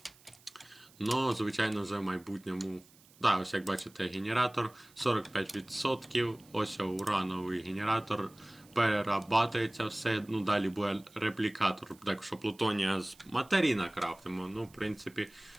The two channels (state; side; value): noise; right; hiss, 27 dB below the sound